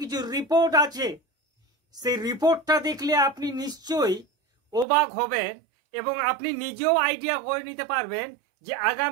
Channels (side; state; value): left; drops out; at 4.9 s